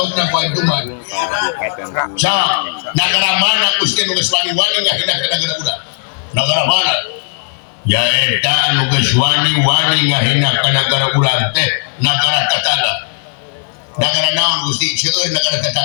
baik kumaha Kabupaten Kuningan. negara mana Gusti nu geus wani-wani ngahendak ka negara urang negara mana ya eta anu geus wani-wani ngahendak ka negara urang teh negara tetangga. Negara naon Gusti seueur negara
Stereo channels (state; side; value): silent; right; digital silence